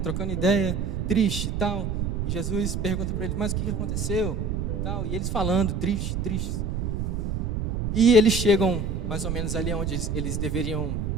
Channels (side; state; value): right; noise; rumble, 1 dB below the sound